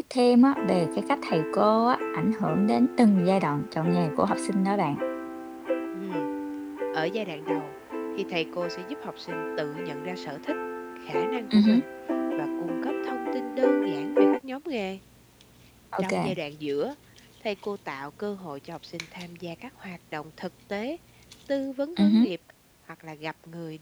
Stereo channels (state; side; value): identical; both; correlation 1.00